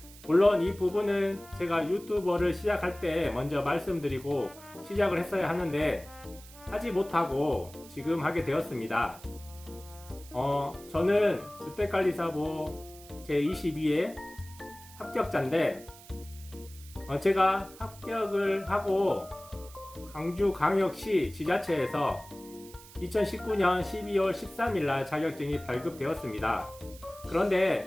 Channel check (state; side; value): noise; right; hiss, 20 dB below the sound